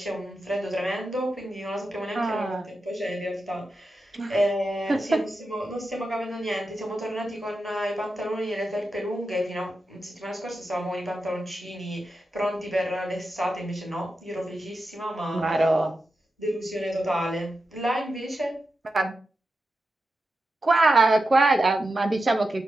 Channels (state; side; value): normal; both; correlation 0.90